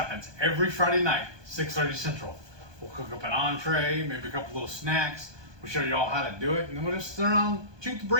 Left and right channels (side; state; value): left; late; 1.2 ms